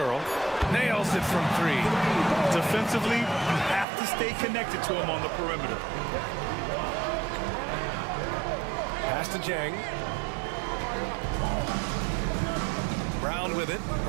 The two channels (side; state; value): left; drops out; at 3.9 s